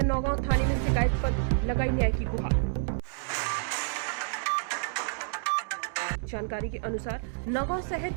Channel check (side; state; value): left; silent; digital silence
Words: नौगांव थाने में शिकायत पत्र, लगाई न्याय की गुहार। जानकारी के अनुसार नौगांव